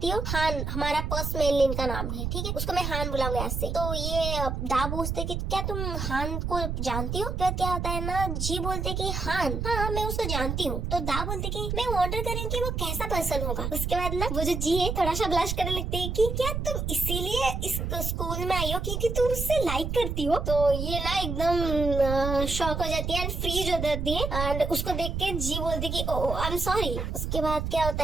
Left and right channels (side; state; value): right; noise; rumble, 2 dB below the sound